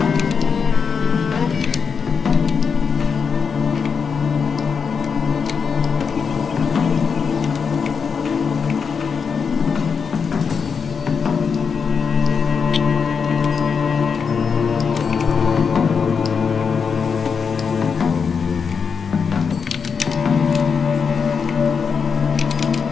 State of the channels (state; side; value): quieter; right; 6.0 dB